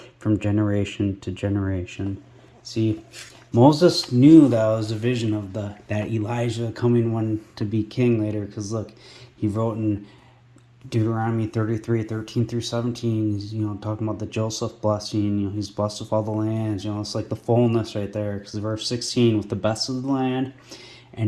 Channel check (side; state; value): both; identical; correlation 1.00